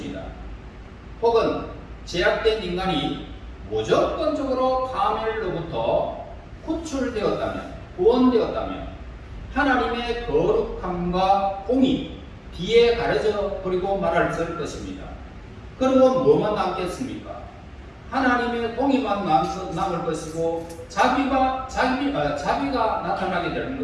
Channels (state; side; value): identical; both; correlation 1.00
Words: 혹은 제약된 인간이 무조건적으로 파멸로부터 구출되었다면 구원되었다면 하나님의 거룩함과 공의 뒤에 가려져 버리고 말할 것입니다. 그리고 뭐만 남겠습니까? 하나님의 공의만 남을 것이고 자비가 나타나게